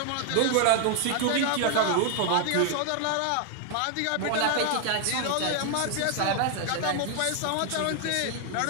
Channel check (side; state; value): both; different; correlation 0.00